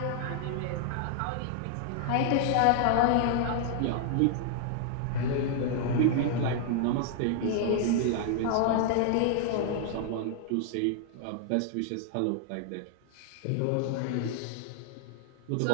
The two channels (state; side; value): different; both; correlation 0.00